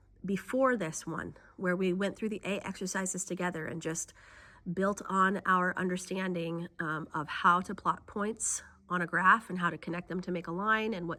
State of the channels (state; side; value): identical; both; correlation 1.00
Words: before this one, where we went through the A exercises together and just built on our understanding of how to plot points on a graph and how to connect them to make a line and